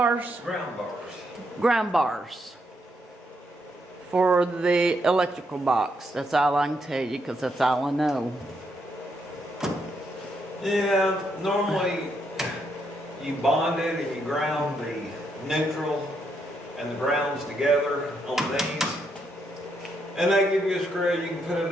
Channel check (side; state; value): both; normal; correlation 0.77